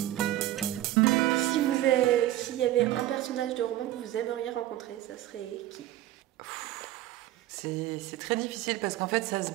S'il y avait un personnage de roman que vous aimeriez rencontrer, ça serait qui? C'est très difficile parce qu'en fait, ça se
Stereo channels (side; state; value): left; quieter; 14.3 dB